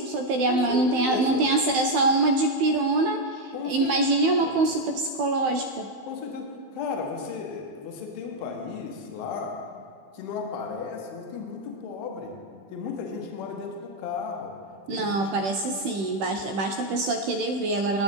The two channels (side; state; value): left; late; 15 ms